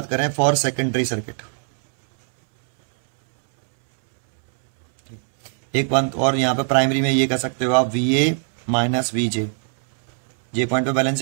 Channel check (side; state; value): left; silent; 64 dB below the other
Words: करें, फॉर सेकेंडरी सर्किट एक बात और, यहाँ पे प्राइमरी में ये कह सकते हो आप VA minus VJ, J point पे